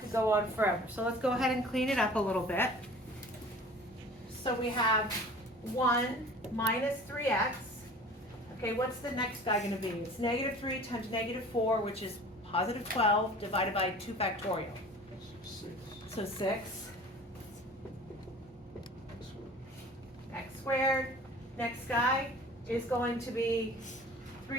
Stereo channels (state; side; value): normal; both; correlation 0.44